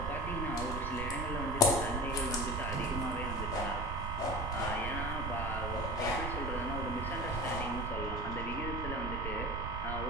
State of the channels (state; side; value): noise; right; rumble, 4 dB below the sound